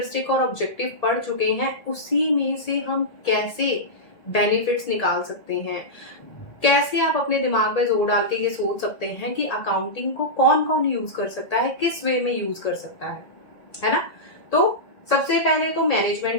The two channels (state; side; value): late; right; 1.8 ms